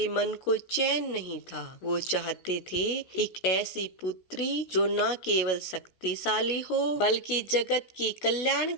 मन को चैन नहीं था। वो चाहते थे एक ऐसी पुत्री जो न केवल शक्तिशाली हो बल्कि जगत की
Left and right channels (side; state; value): right; late; 16 ms